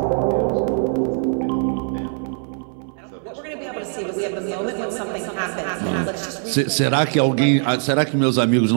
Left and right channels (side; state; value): left; silent; 63 dB below the other